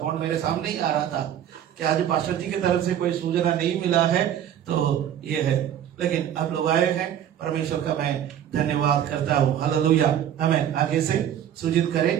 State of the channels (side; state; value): left; quieter; 10.2 dB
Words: मेरे सामने ही आ रहा था कि आज पास्टर जी की तरफ से कोई सूचना नहीं मिला है तो ये है। लेकिन आप लोग आए हैं, परमेश्वर का मैं धन्यवाद करता हूँ। हालेलुया। हमें आगे से सूचित करे